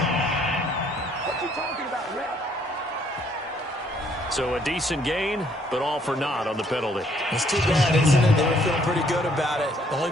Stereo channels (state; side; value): normal; both; correlation 0.65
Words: So a decent gain, but all for naught on the penalty. It's too bad, isn't it? They were feeling pretty good about it. The only